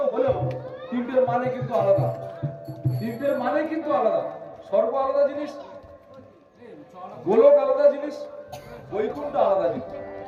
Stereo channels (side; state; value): both; identical; correlation 1.00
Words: হলেও তিনটের মানে কিন্তু আলাদা, তিনটের মানে কিন্তু আলাদা। স্বর্গ আলাদা জিনিস, গোলক আলাদা জিনিস, বৈকুণ্ঠ আলাদা জিনিস,